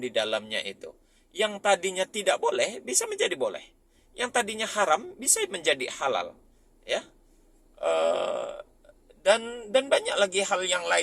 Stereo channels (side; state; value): both; identical; correlation 1.00